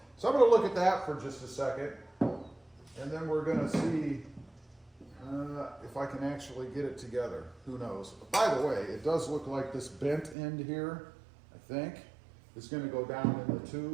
So I'm going to look at that for just a second. And then we're going to see if I can actually get it together. Who knows? By the way, it does look like this bent end here, I think, is going to go down in the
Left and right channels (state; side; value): drops out; left; at 10.4 s